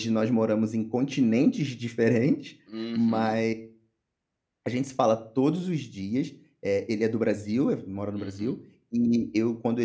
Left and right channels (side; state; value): both; identical; correlation 1.00